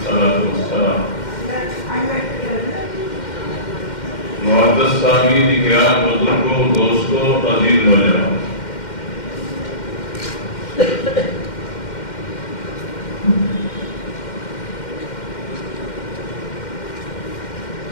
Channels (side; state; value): right; late; 2.1 ms